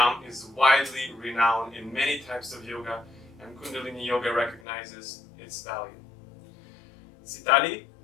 is widely renowned in many types of yoga, and Kundalini Yoga recognizes its value. Sitali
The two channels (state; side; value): drops out; right; at 4.6 s